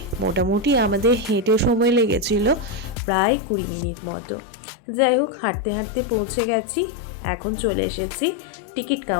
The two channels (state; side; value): drops out; right; at 3.0 s